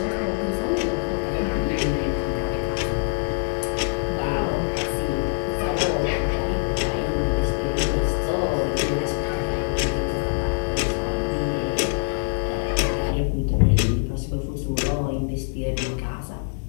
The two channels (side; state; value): right; silent; 62 dB below the other